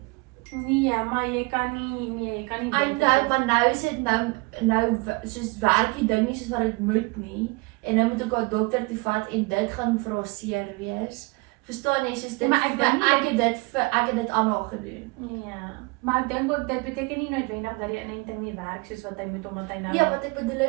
Nee, maar jy kan nie I know, maar nou is dit nou soos werk die ding nie soos wat dit moet nie en nou moet ek haar dokter toe vat en dit gaan vir haar seer wees. Verstaan jy? Soos dit Maar ek dink nie ek het dit aan haar gedoen. Ja, maar ek dink ook dit beteken nie noodwendig dat die inenting nie werk soos wat hy moet omdat hy nou Ja, wat ek bedoel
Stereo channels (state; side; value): quieter; left; 26.9 dB